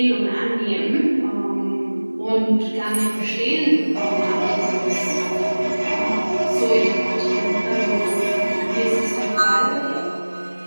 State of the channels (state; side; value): inverted; both; correlation -1.00